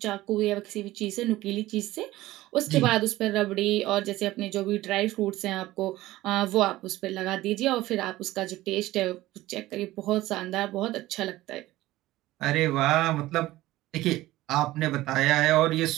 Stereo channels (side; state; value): left; quieter; 16.9 dB